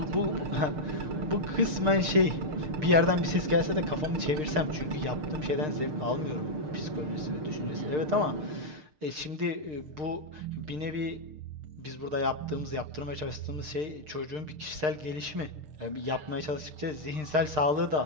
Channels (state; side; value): late; left; 6.6 ms